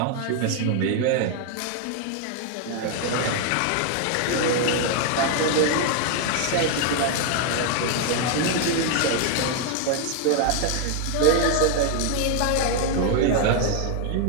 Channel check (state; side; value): different; both; correlation 0.00